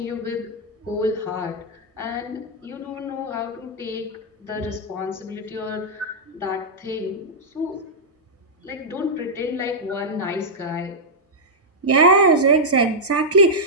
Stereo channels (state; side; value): normal; both; correlation -0.07